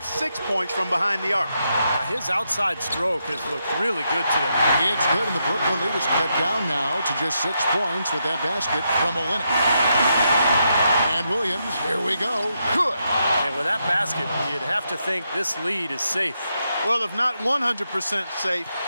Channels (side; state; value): both; inverted; correlation -0.82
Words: 6 points from behind the arc. His outside stroke has looked really good today. It's good, and the Brooklyn lead is cut down now to just 6 points with that basket from Olenek. And Williams, here we go. Good. And with that basket, you'd have to think this lead is safe. Well, if not 100% safe,